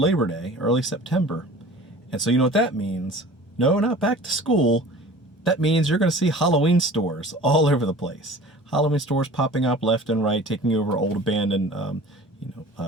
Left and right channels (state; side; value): normal; both; correlation 0.43